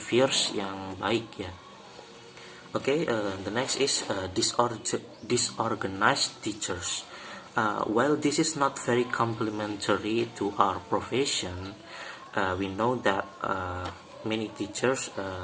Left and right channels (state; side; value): identical; both; correlation 1.00